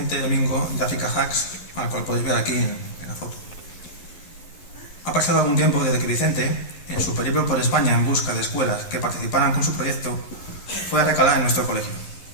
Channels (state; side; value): late; right; 11 ms